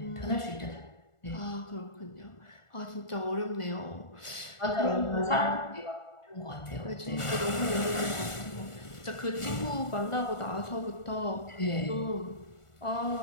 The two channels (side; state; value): right; late; 1.4 ms